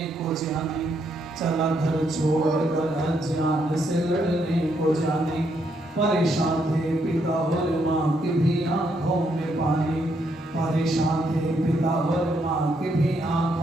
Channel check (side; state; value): both; normal; correlation 0.75